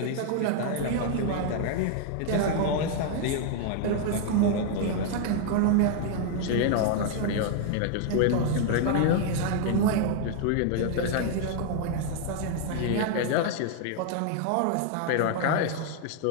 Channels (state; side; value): different; both; correlation 0.00